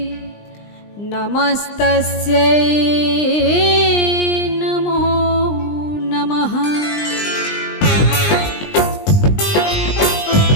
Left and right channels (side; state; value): right; late; 20 ms